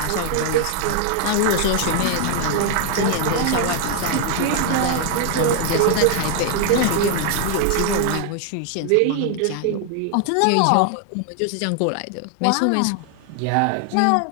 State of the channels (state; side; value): different; both; correlation 0.00